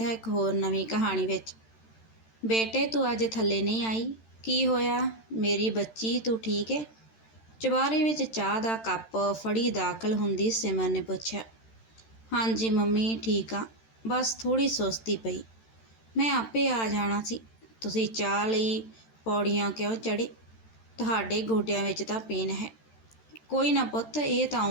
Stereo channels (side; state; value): right; late; 13 ms